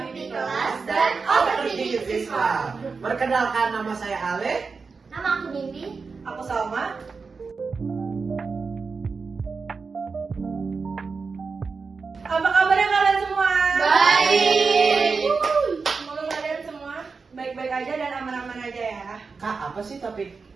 Mimpi Kelas dan Overthinking Siswa. Perkenalkan, nama saya Ale. Nama aku Mimpi. Aku Salma. Apa kabarnya kalian semua? Baik. Semoga kalian semua baik-baik aja dan aman-aman aja ya. Kak, apa sih topik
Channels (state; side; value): quieter; left; 4.8 dB